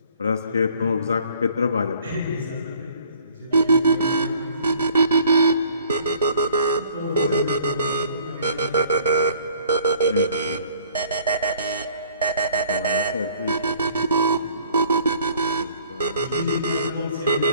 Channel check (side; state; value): both; inverted; correlation -0.57